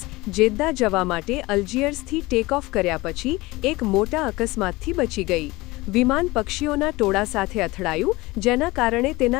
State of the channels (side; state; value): right; quieter; 21.2 dB